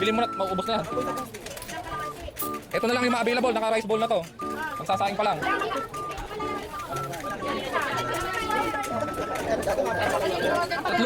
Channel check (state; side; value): identical; both; correlation 1.00